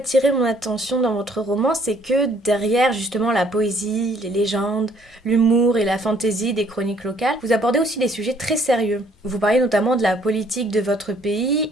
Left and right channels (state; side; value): normal; both; correlation 0.63